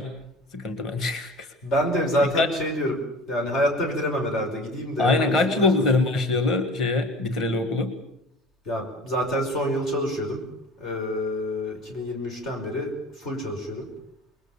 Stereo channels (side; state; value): both; normal; correlation 0.40